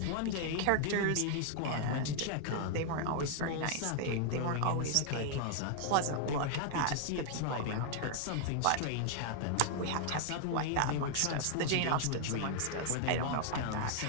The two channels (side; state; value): both; different; correlation 0.00